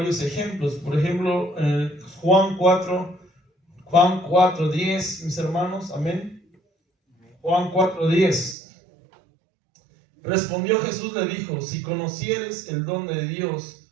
ejemplos. Por ejemplo, Juan 4:10, mis hermanos. Amén. Juan 4:10. Respondió Jesús, le dijo: si conocieres el don de Dios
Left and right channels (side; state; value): left; drops out; at 8.6 s